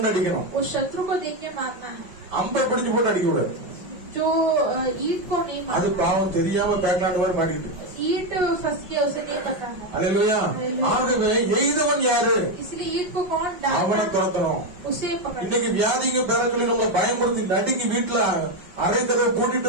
அடிக்கணும். उस शत्रु को देख के मारना है, அம்பை பிடிச்சு போட்டு அடிக்க கூடாது. जो ईट को नहीं அது मारना। பாவம் தெரியாம பேக்லாண்ட் மாதிரி மாறிட்டு. ईट फंस गया, उसे नहीं पता है, அல்லேலூயா. ஆகவே எய்தவன் யாரு? इसलिए ईट को कौन அவனை डालना, துரத்தணும். उसे पकड़ना। இன்னைக்கு வியாதிங்க பேர சொல்லி நம்ம பயமுறுத்தி நடுங்கி வீட்டுல அரை கதவை பூட்டிட்டு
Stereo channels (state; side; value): late; left; 5.5 ms